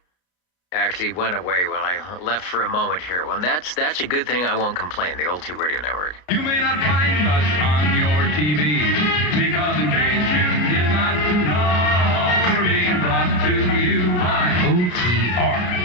actually went away when I left for a moment here. Well, that's a good thing. I won't complain. The Old Tube Radio Network. You may not find us on your TV because in case you did not know, we're being brought to you by OTR.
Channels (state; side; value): late; right; 34 ms